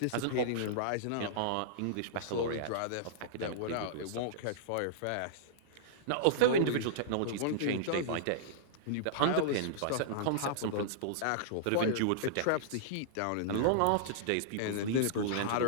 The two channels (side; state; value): both; different; correlation -0.02